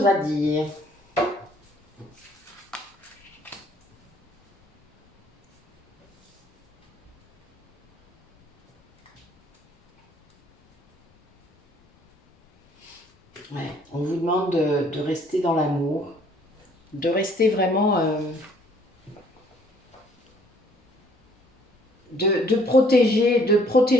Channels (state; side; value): normal; both; correlation 0.60